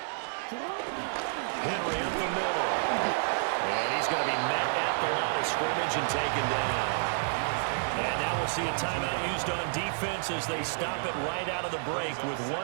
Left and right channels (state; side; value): silent; left; digital silence